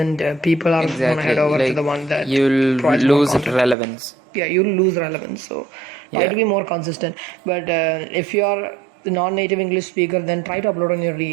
people are gonna head over to the one that you'll lose relevance. You'll lose relevance. So try to be more consistent. But if you're the non-native English speaker, then try to upload on your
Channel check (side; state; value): left; drops out; at 3.8 s